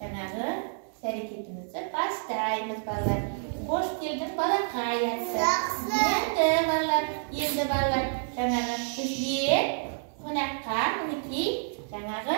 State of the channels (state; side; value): silent; left; 55 dB below the other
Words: іс-әрекетімізді бастаймыз, балалар. Қош келдің балақай атты. Енді балалар, жаңағы бізге қонаққа мінекей жаңағы